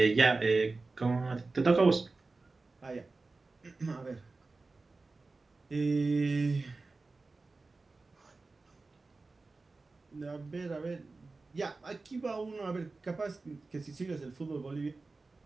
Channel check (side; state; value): left; quieter; 3.7 dB